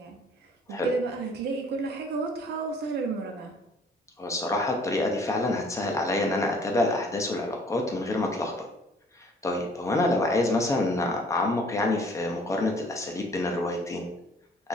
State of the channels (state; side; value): normal; both; correlation 0.56